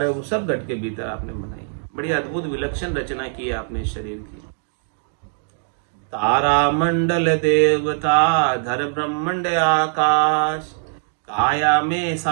है वो सब घट के भीतर आपने बनाई। बड़ी अद्भुत विलक्षण रचना की है आपने शरीर की। तारा मंडल देवता धर ब्रह्मांड आकाश, काया में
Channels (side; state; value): left; silent; 64 dB below the other